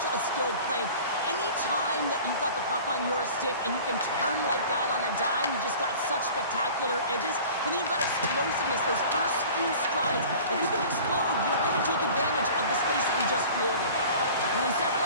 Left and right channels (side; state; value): both; inverted; correlation -0.43